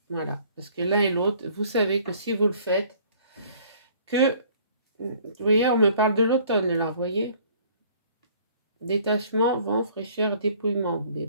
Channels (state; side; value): inverted; both; correlation -0.56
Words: Voilà, parce que l'un et l'autre, vous savez que si vous le faites, vous voyez, on me parle de l'automne là, vous voyez, détachement, vent, fraîcheur, dépouillement, mais